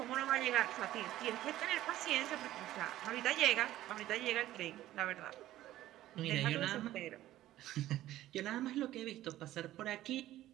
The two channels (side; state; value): left; quieter; 14.4 dB